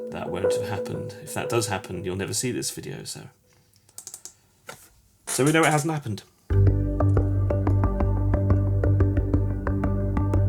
that won't have happened. If that does happen, you'll never see this video, so we know it hasn't happened.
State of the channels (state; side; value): identical; both; correlation 1.00